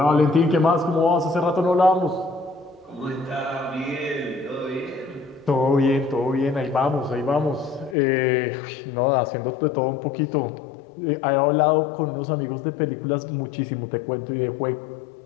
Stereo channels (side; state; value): right; drops out; at 8.0 s